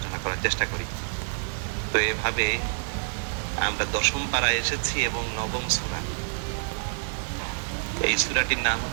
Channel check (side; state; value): left; silent; digital silence